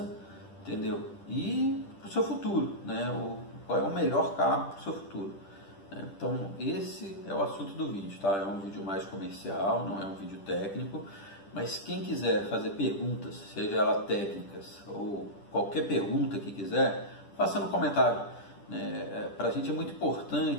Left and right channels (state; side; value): late; right; 10 ms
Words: entendeu? E para o seu futuro, né? Qual é o melhor carro para o seu futuro. Então esse é o assunto do vídeo, tá? É um vídeo mais comercial, não é um vídeo técnico, mas quem quiser fazer perguntas, seja elas técnicas ou qualquer pergunta que quiser, faça no comentário, né? Para a gente é muito